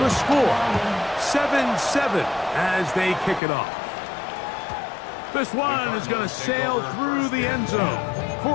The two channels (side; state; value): right; drops out; at 3.4 s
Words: score. 7-7 as they kick it off. This one is going to sail through the end zone